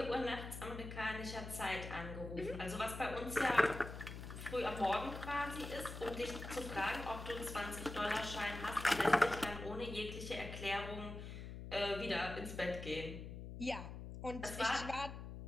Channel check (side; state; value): left; noise; hum, 9 dB below the sound